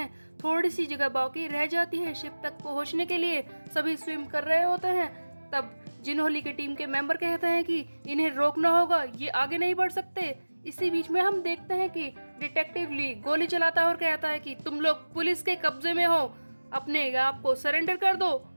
थोड़ी सी जगह बाकी रह जाती है शिप तक पहुंचने के लिए, सभी स्विम कर रहे होते हैं। तब जिन्होली की टीम के मेंबर कहते हैं कि इन्हें रोकना होगा, ये आगे नहीं बढ़ सकते। इसी बीच में हम देखते हैं कि डिटेक्टिव ली गोली चलाता है और कहता है कि तुम लोग पुलिस के कब्जे में हो, अपने आप को सरेंडर कर दो।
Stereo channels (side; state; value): both; inverted; correlation -1.00